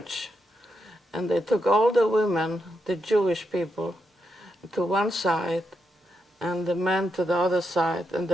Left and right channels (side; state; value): both; normal; correlation 0.83